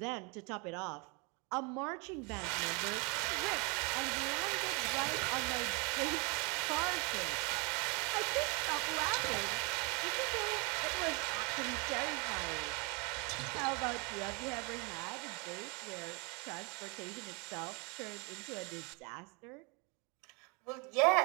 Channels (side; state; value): left; quieter; 31.4 dB